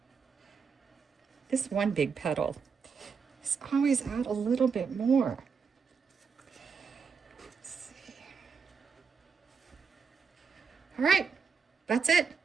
This one big petal is always out a little bit more. All right, that's it.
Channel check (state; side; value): quieter; left; 5.7 dB